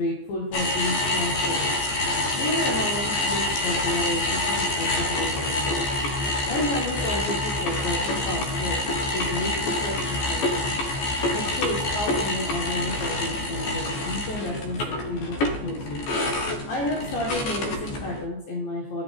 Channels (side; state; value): right; late; 14 ms